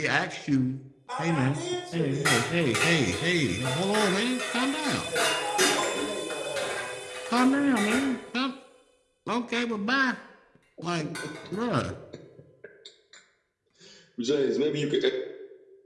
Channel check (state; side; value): identical; both; correlation 1.00